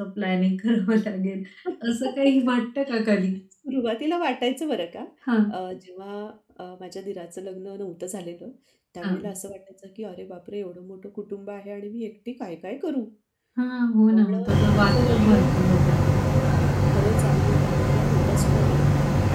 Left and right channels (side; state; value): both; identical; correlation 1.00